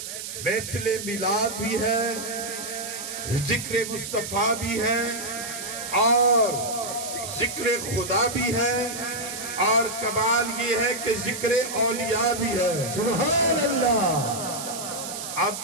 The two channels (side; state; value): right; noise; hiss, 7 dB below the sound